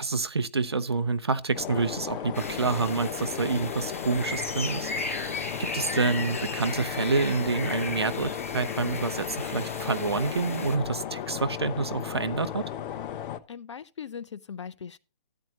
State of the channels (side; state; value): both; inverted; correlation -0.47